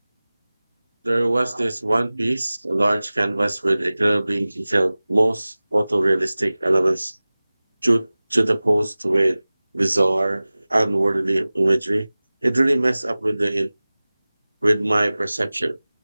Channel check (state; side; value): inverted; both; correlation -0.98